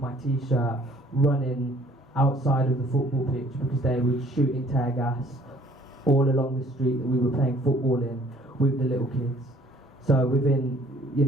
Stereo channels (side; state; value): both; normal; correlation 0.57